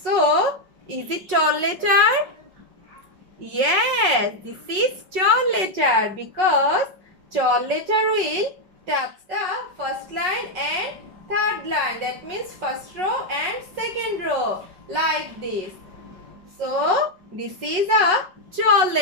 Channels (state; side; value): late; left; 5.4 ms